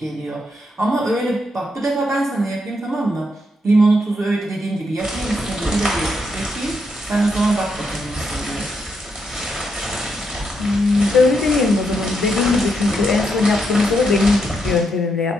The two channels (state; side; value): normal; both; correlation 0.80